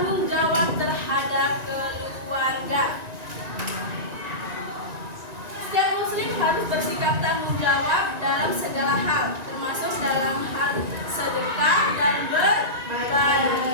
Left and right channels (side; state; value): left; late; 1.9 ms